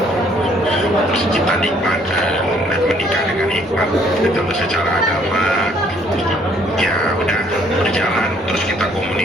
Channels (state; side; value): normal; both; correlation 0.63